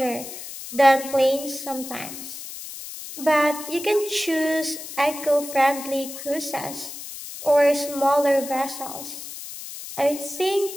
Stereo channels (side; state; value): left; noise; hiss, 11 dB below the sound